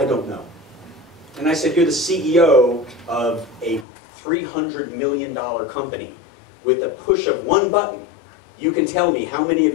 don't know. And I said, you're the CEO of a $300 million company. With a push of one button, you can tell me how many of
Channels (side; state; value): right; drops out; at 3.9 s